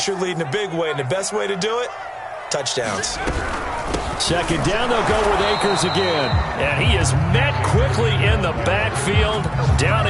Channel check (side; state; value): both; identical; correlation 1.00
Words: your lead in a big way. And the best way to do it, touchdowns. Second down, they'll go with Akers again. And he is met quickly in the backfield. Down